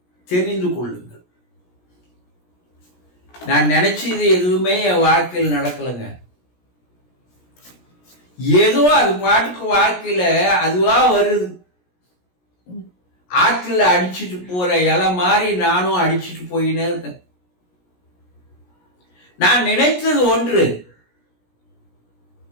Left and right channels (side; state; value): right; late; 17 ms